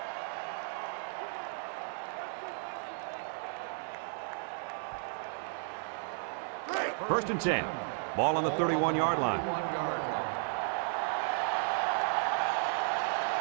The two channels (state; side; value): silent; left; 55 dB below the other